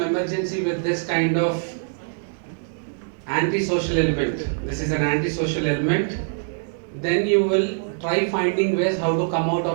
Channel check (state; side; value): silent; left; digital silence